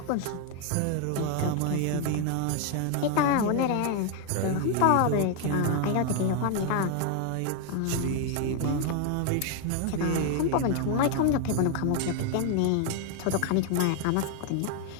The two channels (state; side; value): different; both; correlation 0.01